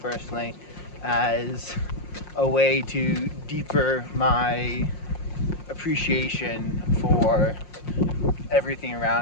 personally as a way to deeper my appreciation for everything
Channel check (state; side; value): late; right; 5.6 ms